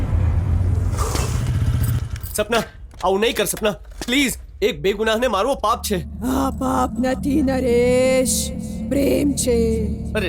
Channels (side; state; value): both; identical; correlation 1.00